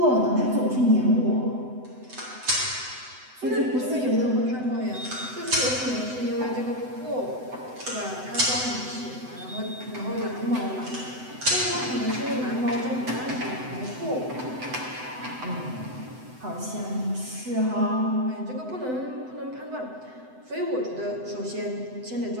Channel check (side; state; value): left; late; 7.9 ms